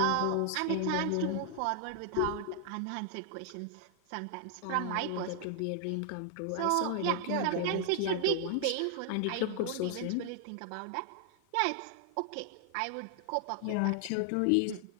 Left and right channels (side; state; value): both; different; correlation 0.00